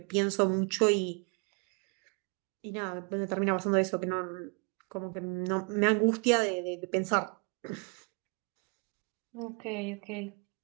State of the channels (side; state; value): left; quieter; 35.4 dB